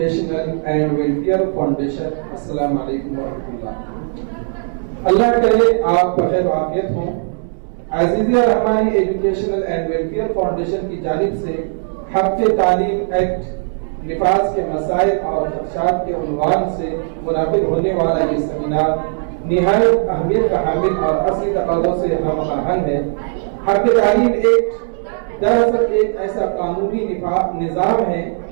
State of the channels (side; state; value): left; silent; digital silence